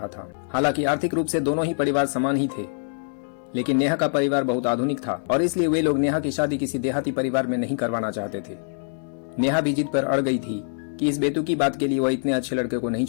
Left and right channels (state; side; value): silent; right; digital silence